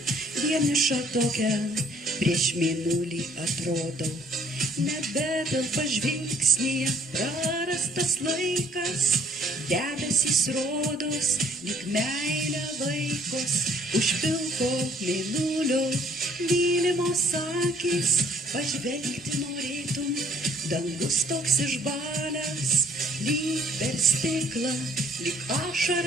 vieniša tokia prieš mėnulį atrodau. Nebetelpa žvilgsnyje prarastas laikas, debesys rodos, lyg meilė vaikos, už pilko mėnulio mylimos akys, pažvelgti norėtum, dangus toks išbalęs, lyg per stiklą, lyg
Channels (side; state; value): both; normal; correlation 0.60